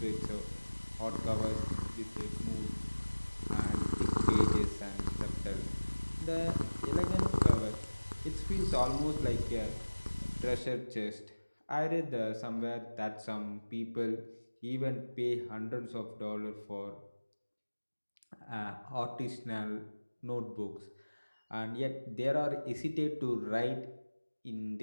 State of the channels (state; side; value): inverted; both; correlation -1.00